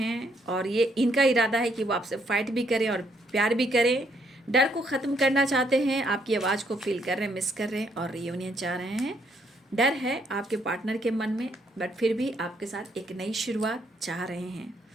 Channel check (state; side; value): normal; both; correlation 0.71